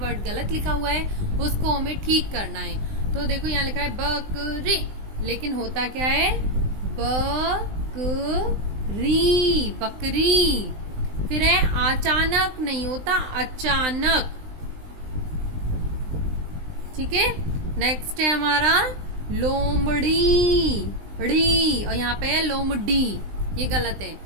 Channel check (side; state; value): left; late; 19 ms